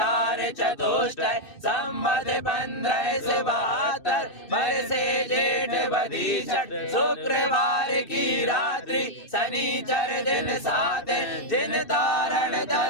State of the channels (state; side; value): late; right; 2.6 ms